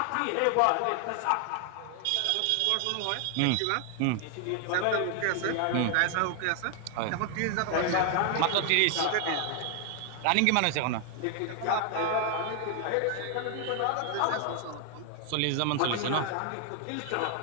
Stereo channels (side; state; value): both; different; correlation 0.00